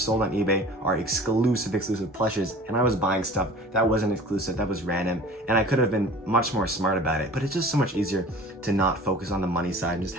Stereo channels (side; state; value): both; normal; correlation 0.43